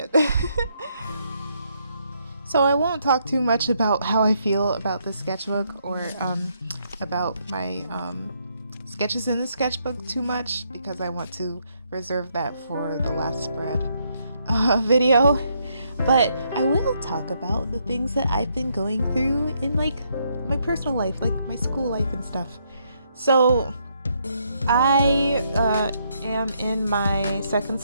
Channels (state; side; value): inverted; both; correlation -0.74